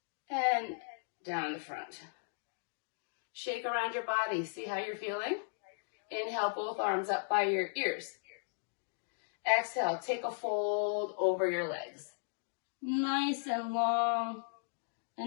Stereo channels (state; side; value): silent; right; digital silence